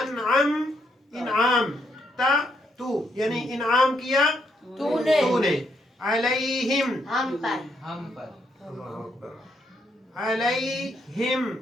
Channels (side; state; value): both; normal; correlation 0.76